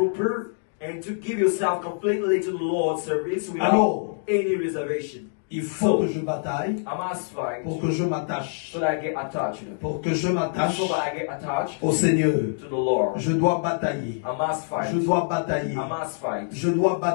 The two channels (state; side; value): silent; right; digital silence